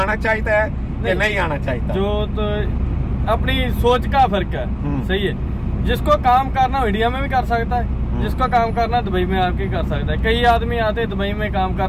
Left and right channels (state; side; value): identical; both; correlation 1.00